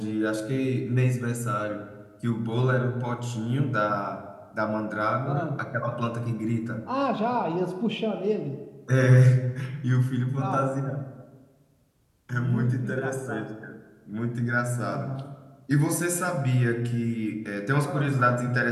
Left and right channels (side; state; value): both; identical; correlation 1.00